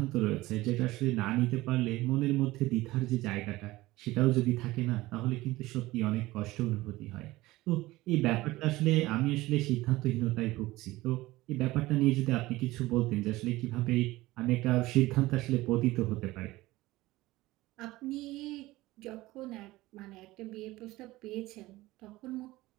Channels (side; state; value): left; quieter; 18.6 dB